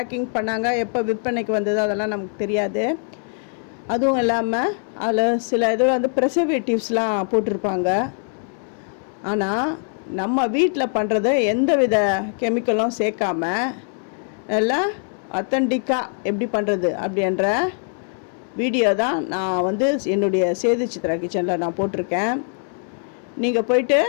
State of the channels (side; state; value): right; silent; 55 dB below the other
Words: பண்ணாங்க, எப்போ விற்பனைக்கு வந்தது அதெல்லாம் நமக்கு தெரியாது. அதுவும் இல்லாமல் அதில் சில இதில் வந்து ப்ரிசர்வேட்டிவ்ஸ்லாம் போட்டிருப்பாங்க. ஆனால் நம்ம வீட்டில் பண்ணுறது எந்த வித கெமிக்கலும் சேர்க்காம நல்லா அத்தன்டிக்காக எப்படி பண்ணுறது அப்படின்ற வீடியோ தான் நான் வந்து என்னுடைய சேது சித்ரா கிச்சனில் நான் போட்டிருக்கேன். நீங்கள் போயிட்டு